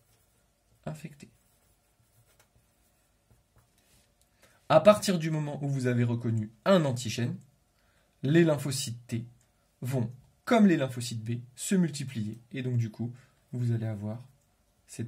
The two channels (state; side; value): identical; both; correlation 1.00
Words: infectée. À partir du moment où vous avez reconnu un antigène, les lymphocytes T vont, comme les lymphocytes B, se multiplier. Et donc, du coup, vous allez avoir